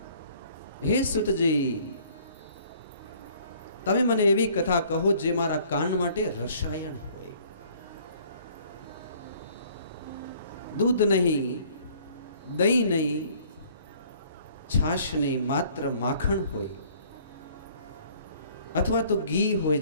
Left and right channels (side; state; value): both; inverted; correlation -0.57